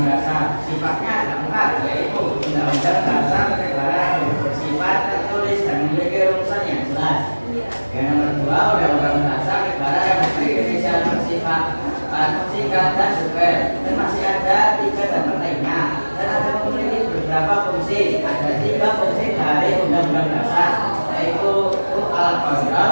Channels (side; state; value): both; inverted; correlation -1.00